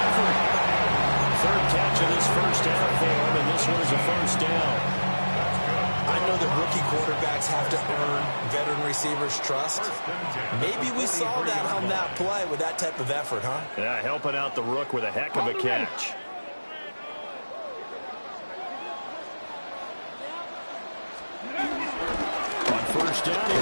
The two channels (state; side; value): inverted; both; correlation -1.00